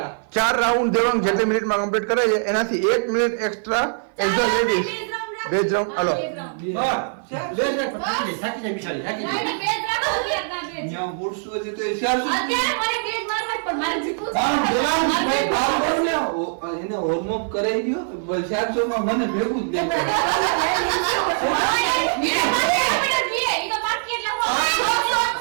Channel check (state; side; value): silent; left; 56 dB below the other